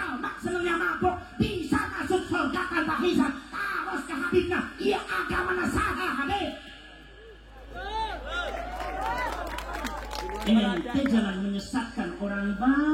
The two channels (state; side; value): identical; both; correlation 1.00